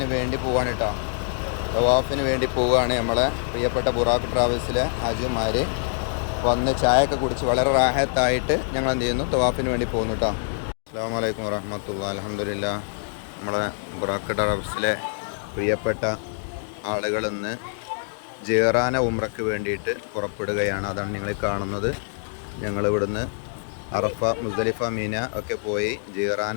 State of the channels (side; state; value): right; silent; digital silence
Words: വേണ്ടി പോവാണ് കേട്ടോ. തവാഫിന് വേണ്ടി പോവുകയാണ്. നമ്മളെ പ്രിയപ്പെട്ട ബുറാഖ് ട്രാവൽസിലെ ഹാജിമാർ വന്ന് ചായയൊക്കെ കുടിച്ച് വളരെ റാഹത്തായിട്ട് ഞങ്ങൾ എന്ത് ചെയ്യുന്നു, തവാഫിന് വേണ്ടി പോകുന്നു കേട്ടോ. അസ്സലാമു അലൈക്കും വറഹ്മത്തുള്ളാഹി. അൽഹംദുലില്ലാഹ്. നമ്മളെ ബുറാഖ് ട്രാവൽസിലെ പ്രിയപ്പെട്ട ആളുകൾ ഇന്ന് ജിറാന ഉംറയ്ക്ക് വേണ്ടിയിട്ട് പുറപ്പെടുകയാണ്. അതാണ് നിങ്ങൾ കാണുന്നത്. ഞങ്ങളിവിടുന്ന് അറഫ, മുസ്ദലിഫ, മീന ഒക്കെ പോയി ജിറാന